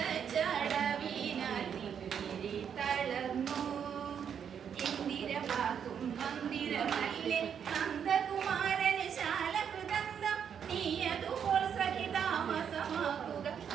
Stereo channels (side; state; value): left; quieter; 7.9 dB